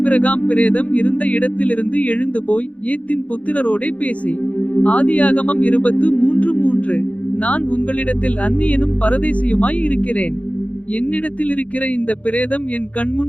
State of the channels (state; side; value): late; right; 0.066 ms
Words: பிரேதம் இருந்த இடத்திலிருந்து எழுந்து போய் ஏத்தின் புத்திரரோடே பேசி. ஆதியாகமம் 23:3. நான் உங்களிடத்தில் அந்நியனும் பரதேசியுமாய் இருக்கிறேன். என்னிடத்தில் இருக்கிற இந்த பிரேதம் என்